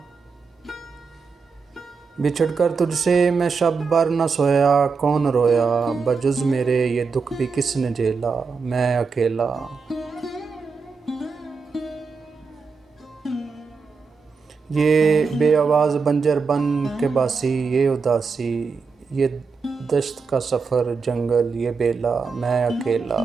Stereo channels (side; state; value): left; quieter; 5.1 dB